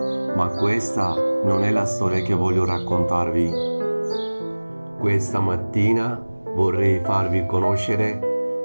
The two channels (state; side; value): inverted; both; correlation -1.00